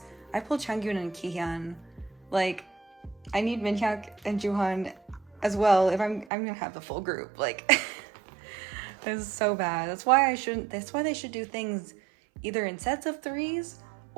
I pulled Changyun and Kihyun. Like, I need Minhyuk and Juhan as well if I'm gonna have the full group. Like, this is so bad. That's why they should do things either in sets of 3s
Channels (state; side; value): drops out; left; at 6.2 s